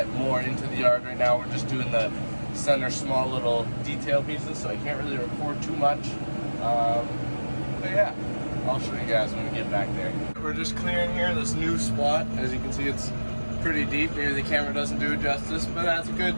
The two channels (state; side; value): inverted; both; correlation -1.00